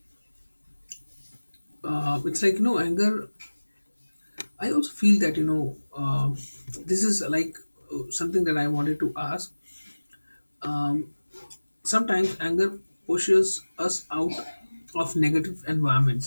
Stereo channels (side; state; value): both; inverted; correlation -1.00